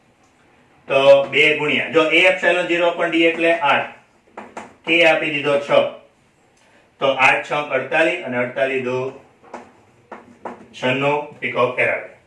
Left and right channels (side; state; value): both; identical; correlation 1.00